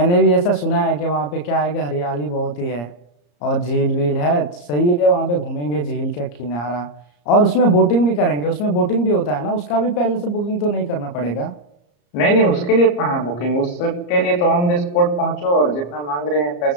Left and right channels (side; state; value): right; late; 34 ms